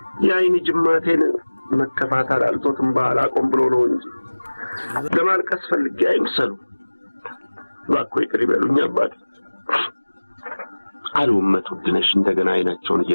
የአይን ጅማቴን መከፋት አላልቶትም ባላቆም ብሎ ነው እንጂ ለማልቀስ ፈልጌ አይምሰሉ። እባክዎ ይቅር ይበሉኝ አባቴ አሉ እመት ውድነሽ እንደገና አይናቸውን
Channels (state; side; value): inverted; both; correlation -1.00